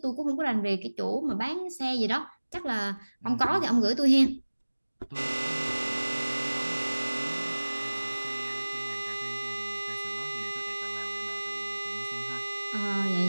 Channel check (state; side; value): inverted; both; correlation -1.00